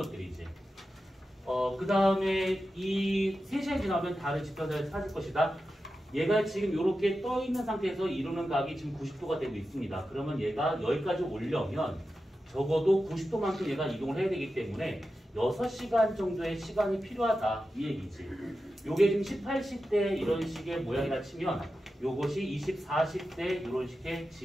그 다음에 이 3시간이 지나면 달의 지표를 찾을 것이다. 얘가 지금 이렇게 떠 있는 상태에서 이루는 각이 지금 90도가 되고 있습니다. 그러면 얘가 여기까지 오려면 적어도 90도만큼 얘가 이동을 해야 되기 때문에 6시간 정도의 시간이 필요하다 이 얘기지. 요게 지금 18시대 이런 식의 모양이라 치면 요것이 24시대 이런 식의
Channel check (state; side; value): normal; both; correlation 0.91